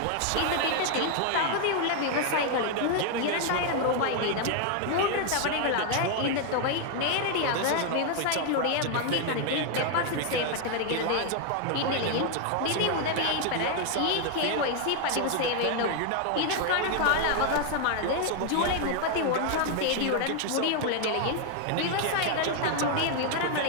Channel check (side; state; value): both; different; correlation 0.00